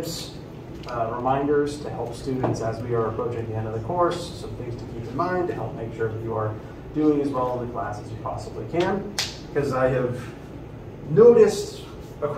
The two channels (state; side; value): identical; both; correlation 1.00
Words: reminders to help students as we are approaching the end of the course, some things to keep in mind to help make sure that you are doing as well in the class as you possibly can, because I have noticed